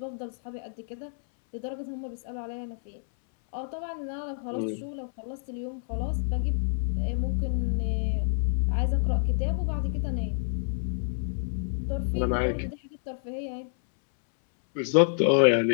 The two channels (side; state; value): right; silent; 59 dB below the other